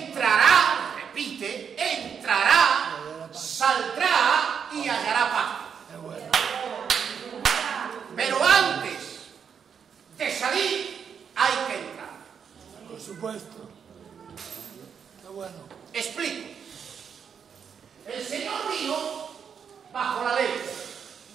repite, entrará, saldrá y hallará paz. Qué bueno. Pero antes de salir, hay que entrar. Por supuesto. Qué bueno. Explico. El Señor vino bajo la ley,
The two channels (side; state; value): left; quieter; 7.1 dB